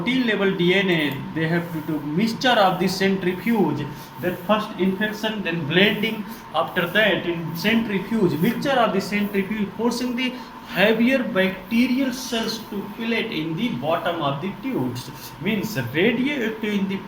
level DNA they have to do mixture of the centrifuge, then first infection, then blending. After that, in centrifuge, mixture of the centrifuge forcing the heavier bacterial cells to fillet in the bottom of the tubes, means radioactive in the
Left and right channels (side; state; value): both; identical; correlation 1.00